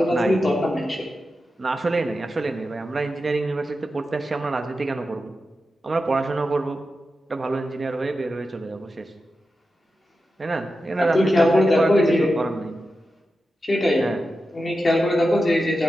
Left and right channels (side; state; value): both; normal; correlation 0.91